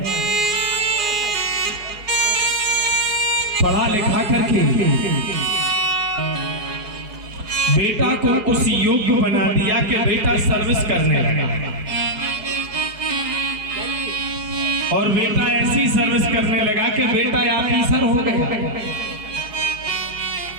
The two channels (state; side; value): late; left; 4.8 ms